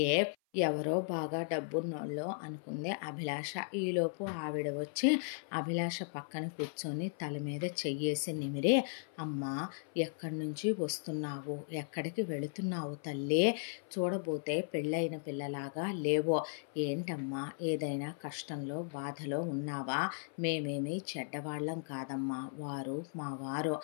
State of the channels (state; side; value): silent; right; 54 dB below the other